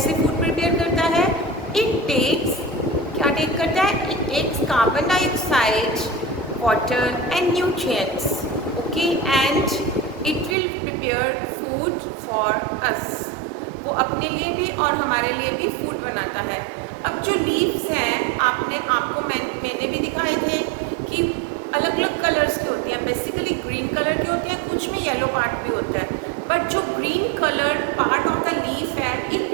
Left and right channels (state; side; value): drops out; left; at 10.6 s